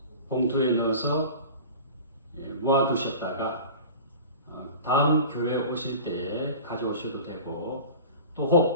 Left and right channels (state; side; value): inverted; both; correlation -0.37